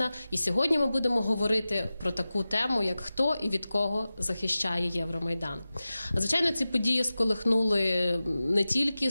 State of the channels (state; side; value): inverted; both; correlation -0.95